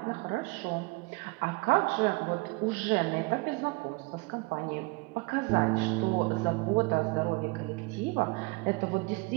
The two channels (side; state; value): left; quieter; 27.2 dB